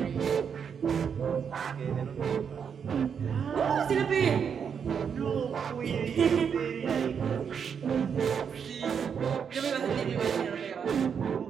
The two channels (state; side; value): quieter; left; 7.1 dB